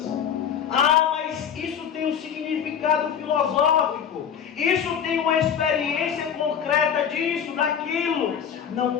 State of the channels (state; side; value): quieter; right; 8.1 dB